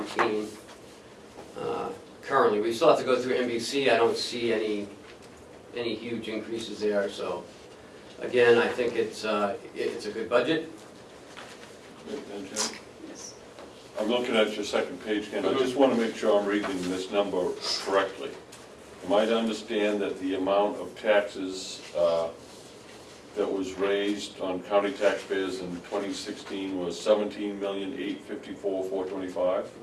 Currently, we still have to go through NBC. I don't see any huge increases there. So, again, I think it's a good budget. and Jim? Yes. I'm looking at your second page, Ken, I just wanna make sure I'm reading this number correctly. Am I to understand that the amount of taxes, that was raised on county taxpayers in 2016 was 17,854,425?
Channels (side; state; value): both; identical; correlation 1.00